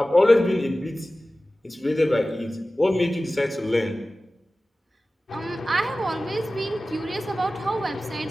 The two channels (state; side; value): normal; both; correlation 0.96